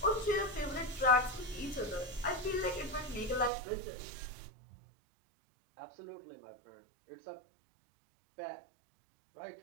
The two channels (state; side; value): drops out; left; at 3.5 s